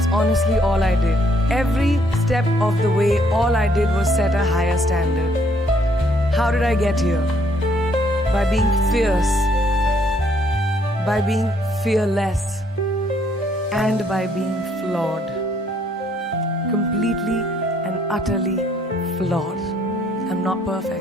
honestly all I did. Every step of the way, all I did was set a higher standard. How did I get here? By being fierce, by being fearless, and by being flawed. Completely and utterly flawed. I'm not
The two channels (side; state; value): both; normal; correlation 0.67